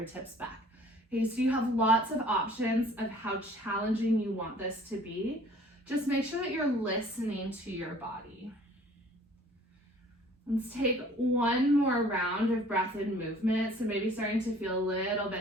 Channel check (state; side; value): normal; both; correlation 0.53